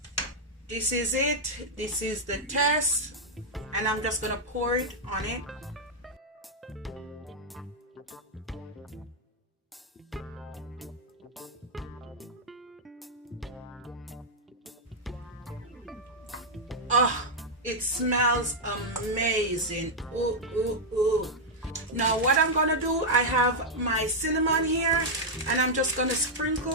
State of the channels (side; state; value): both; normal; correlation -0.03